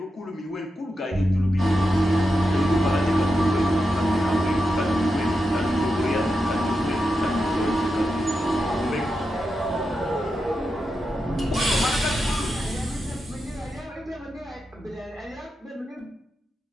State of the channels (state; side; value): normal; both; correlation 0.88